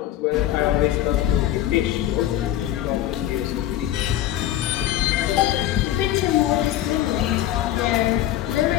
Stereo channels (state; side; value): quieter; right; 13.1 dB